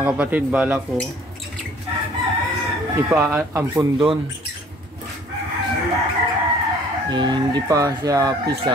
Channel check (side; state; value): both; normal; correlation 0.55